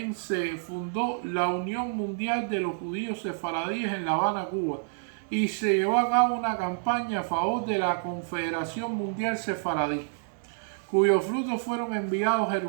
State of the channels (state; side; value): silent; left; digital silence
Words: se fundó la Unión Mundial de los Judíos Sefaradíes en La Habana, Cuba, y se llevó a cabo una campaña a favor de la Confederación Mundial Sefaradí, cuyos frutos fueron enviados a